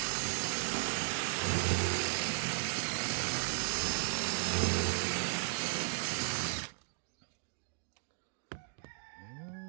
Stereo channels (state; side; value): silent; left; digital silence